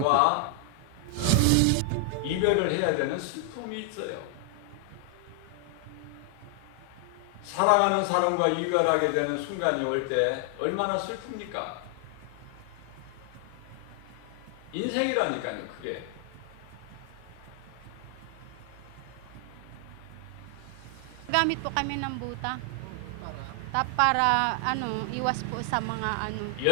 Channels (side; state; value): both; different; correlation 0.00